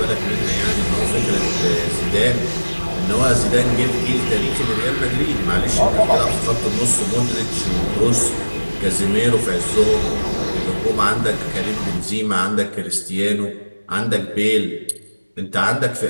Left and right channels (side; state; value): both; inverted; correlation -1.00